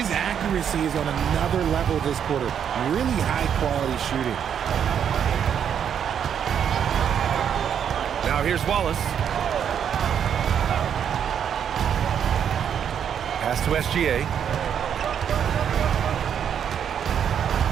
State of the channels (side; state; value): left; quieter; 8.4 dB